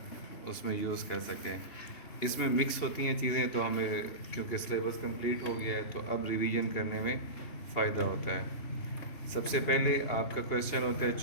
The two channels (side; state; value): right; late; 2.7 ms